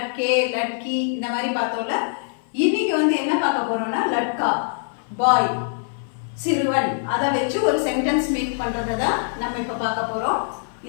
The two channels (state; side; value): silent; right; 57 dB below the other